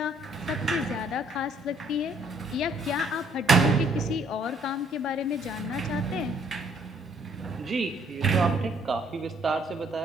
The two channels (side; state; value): both; normal; correlation 0.64